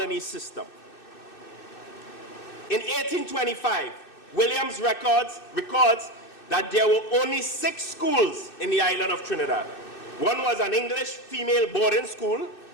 system. In 1825, Williams records that there were only 6 schools in the island of Trinidad. 1 was an English female boarding school,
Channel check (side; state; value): right; late; 2.6 ms